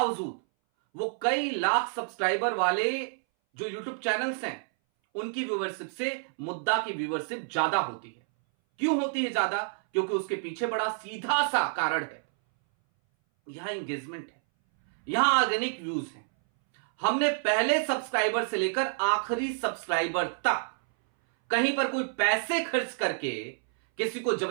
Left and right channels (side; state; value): left; silent; 59 dB below the other